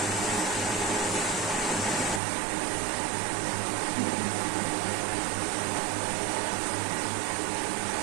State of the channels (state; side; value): drops out; left; at 2.2 s